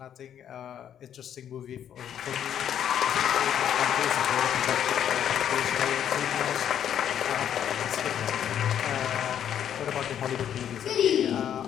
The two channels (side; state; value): right; quieter; 9.6 dB